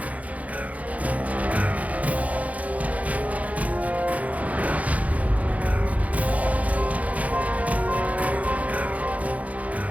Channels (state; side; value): late; left; 0.069 ms